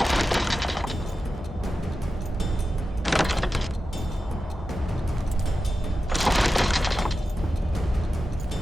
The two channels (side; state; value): both; normal; correlation 0.92